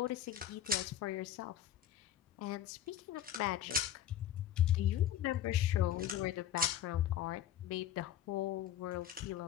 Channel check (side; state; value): right; quieter; 10.6 dB